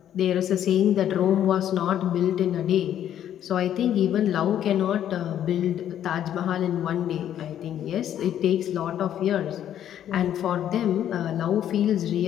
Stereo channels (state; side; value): quieter; right; 10.6 dB